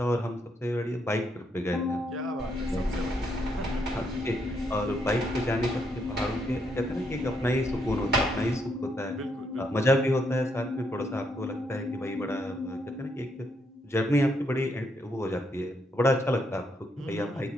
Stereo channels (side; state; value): both; normal; correlation 0.76